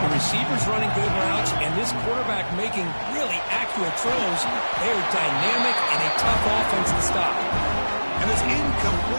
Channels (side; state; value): both; inverted; correlation -1.00